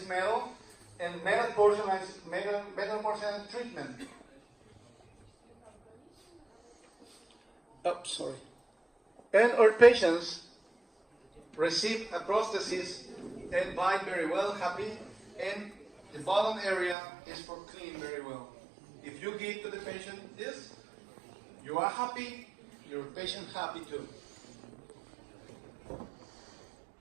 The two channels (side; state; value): left; drops out; at 16.9 s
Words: metal, and metal porcelain treatment. Oh, sorry. And our patients receive a prosthesis and bite very well, happy, and the bottom area is for clean very well. If you give to the patient this, you are happy, your patient happy too.